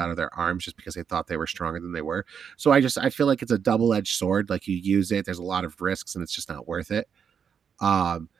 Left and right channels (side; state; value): left; quieter; 7.2 dB